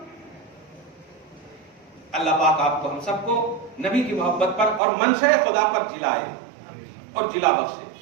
اللہ پاک آپ کو ہم سب کو نبی کی محبت پر اور منشأ خدا پر جلائے اور جلا بخشے.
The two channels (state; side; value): drops out; left; at 4.8 s